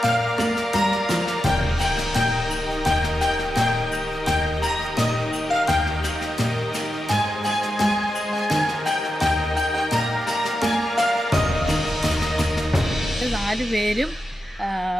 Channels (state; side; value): normal; both; correlation 0.89